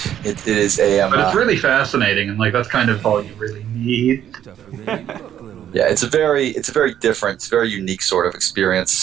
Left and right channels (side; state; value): left; quieter; 10.4 dB